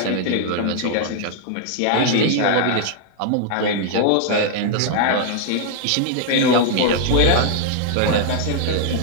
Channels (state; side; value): different; both; correlation -0.01